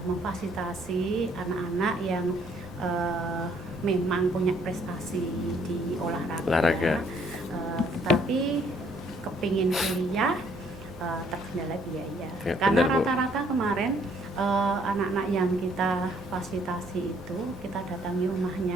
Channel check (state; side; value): normal; both; correlation 0.65